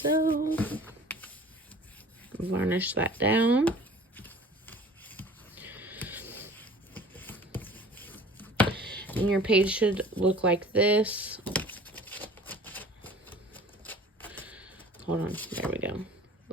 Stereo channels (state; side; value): normal; both; correlation 0.46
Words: Varnish that down. And your page should look like this. Hold on, there we go.